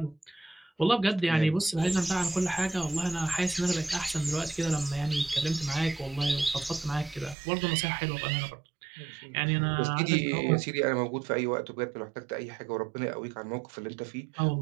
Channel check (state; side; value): drops out; left; at 7.4 s